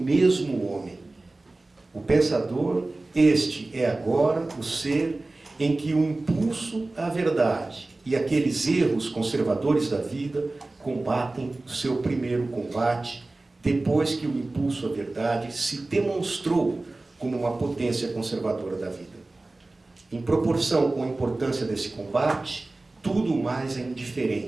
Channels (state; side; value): quieter; left; 3.1 dB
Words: homem. O pensador, este é agora o ser em que o impulso à verdade e aqueles erros conservadores da vida combatem o seu primeiro combate, depois que o impulso à verdade se demonstrou como uma potência conservadora da vida. Em proporção com a importância desse combate, tudo mais é